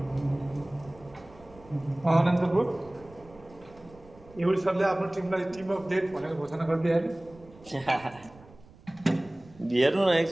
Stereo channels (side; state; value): right; noise; rumble, 23 dB below the sound